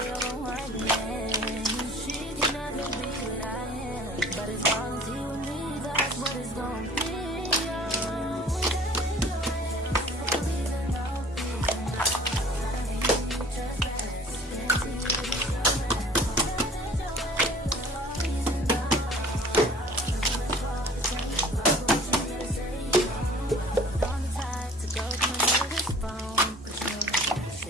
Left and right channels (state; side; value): normal; both; correlation 0.48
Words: on one man. She can never be what I am, but as long as he with me, that's what it's gonna be.